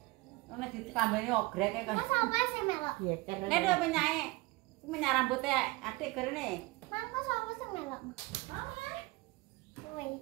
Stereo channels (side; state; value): left; quieter; 22.6 dB